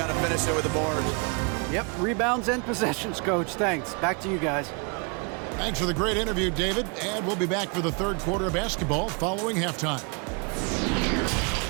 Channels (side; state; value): left; quieter; 34.3 dB